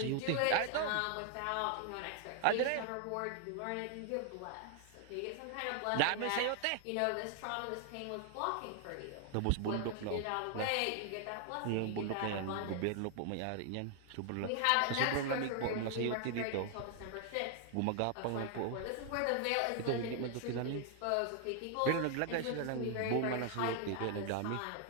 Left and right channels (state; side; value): different; both; correlation 0.00